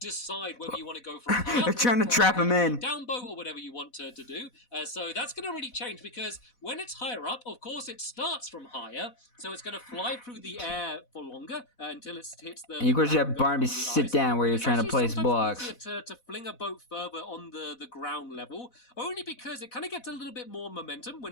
whether you want to go for a They're trying to trap him in. Down boat or whatever you want to do. So that's going to really change, because when it's higher up, of course, it starts from higher. So it's going to fly through the air for longer until it hits the... And of course you have Barnaby sit down where you're trying to place blocks. To fling a boat further on the ground level, only because it kind of gets a little bit more momentum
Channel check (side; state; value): right; late; 4.1 ms